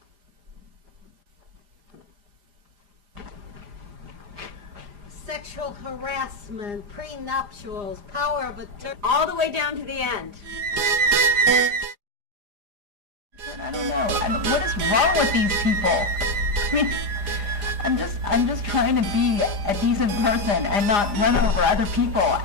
sexual harassment, prenuptials, power of attorney. All the way down to the end. I don't know. What is wrong with these people? I mean, I'm just trying to be a decent person and not run over other people.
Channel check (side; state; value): left; late; 4.9 ms